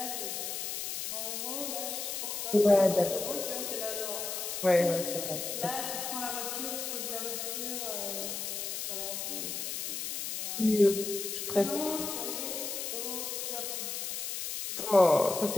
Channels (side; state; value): left; noise; hiss, 3 dB below the sound